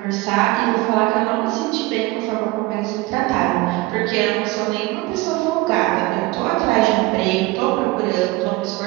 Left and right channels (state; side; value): quieter; left; 20.8 dB